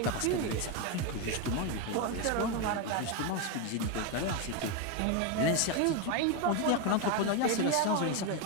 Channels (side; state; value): both; different; correlation 0.02